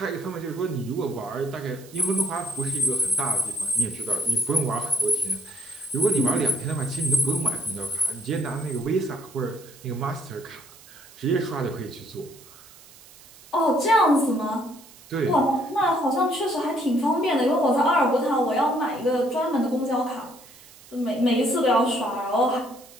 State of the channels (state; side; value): noise; right; hiss, 22 dB below the sound